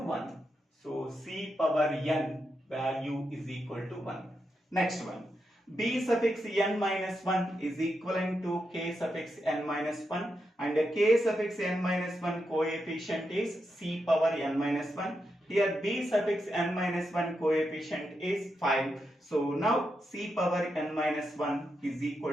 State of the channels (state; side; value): normal; both; correlation 0.85